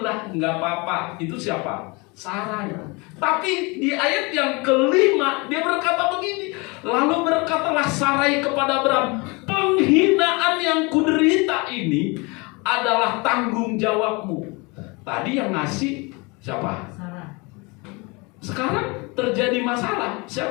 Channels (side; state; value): right; quieter; 27.6 dB